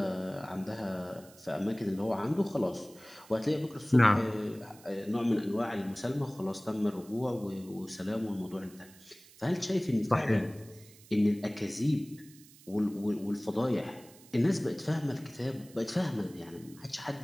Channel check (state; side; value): noise; right; hiss, 23 dB below the sound